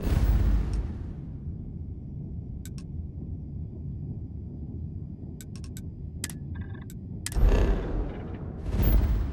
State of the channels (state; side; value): identical; both; correlation 1.00